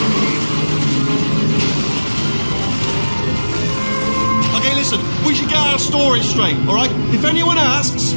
Okay, listen, we should get our story straight, alright? If anyone asks,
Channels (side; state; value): both; inverted; correlation -1.00